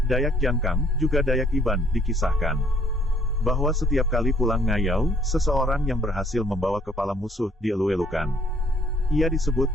Dayak Jangkang, juga Dayak Iban, dikisahkan bahwa setiap kali pulang ngayau, seseorang yang berhasil membawa kepala musuh dielu-elukan. Ia disebut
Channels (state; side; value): normal; both; correlation 0.63